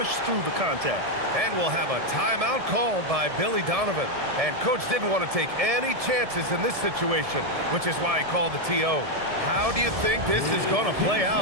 through the contact. And we'll have a timeout called by Billy Donovan. And Coach didn't want to take any chances in this situation, which is why he called the TO. How do you think this is going to play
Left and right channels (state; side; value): late; left; 1.7 ms